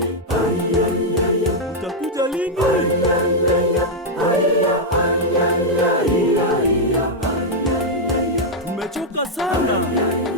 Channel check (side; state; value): both; normal; correlation -0.03